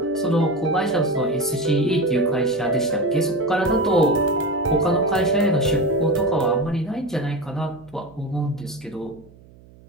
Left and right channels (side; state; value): right; noise; hum, 24 dB below the sound